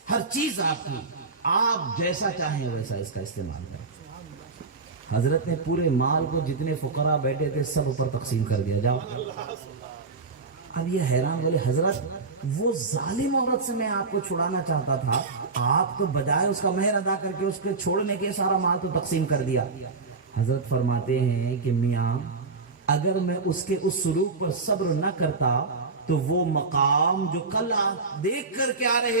ہر چیز آپ کی، آپ جیسا چاہیں ویسا اس کا استعمال کریں۔ حضرت نے پورے مال کو جتنے فقراء بیٹھے تھے سب پر تقسیم کر دیا، جاؤ۔ اب یہ حیران بولے حضرت وہ ظالم عورت سے میں آپ کو چھڑانا چاہتا تھا، آپ تو بجائے اس کا مہر ادا کر کے اس کے چھوڑنے کے سارا مال تو تقسیم کر دیا۔ حضرت فرماتے ہیں کہ میاں اگر میں اس کے اس سلوک پر صبر نہ کرتا تو وہ مقام جو کل آپ دیکھ کر کے آ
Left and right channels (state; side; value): quieter; left; 4.1 dB